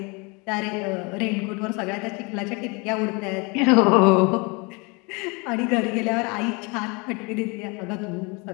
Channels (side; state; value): right; quieter; 29.2 dB